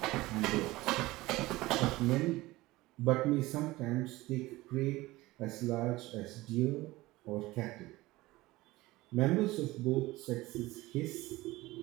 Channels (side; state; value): left; quieter; 19.2 dB